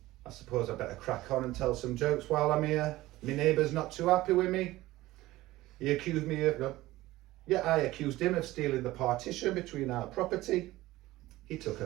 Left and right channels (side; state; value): left; quieter; 17.5 dB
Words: I suppose I better crack on and tell some jokes while I'm here. My neighbour's not too happy with me. He accused me of, I accused him of stealing the partition between our property. He took